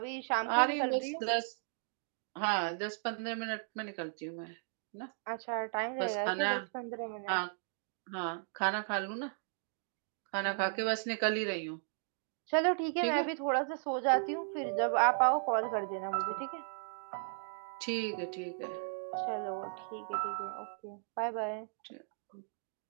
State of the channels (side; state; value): left; silent; digital silence